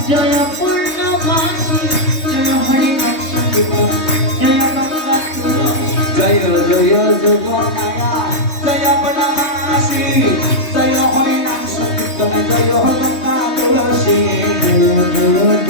জয় পূর্ণমাসী জয় হরি নাম সংকীর্তন জয় গঙ্গা তুলসী। জয় জয় যোগ মায়া জয় পূর্ণমাসী জয় হরি নাম সংকীর্তন জয় গঙ্গা তুলসী জয় জয়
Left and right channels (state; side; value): late; right; 3.2 ms